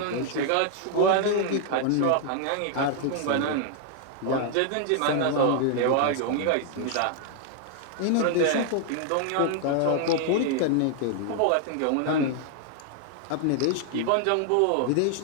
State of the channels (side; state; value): both; different; correlation 0.00